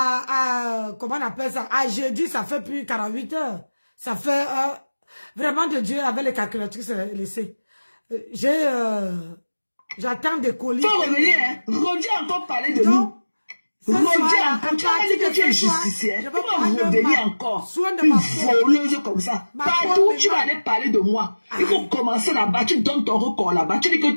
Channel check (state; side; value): inverted; both; correlation -1.00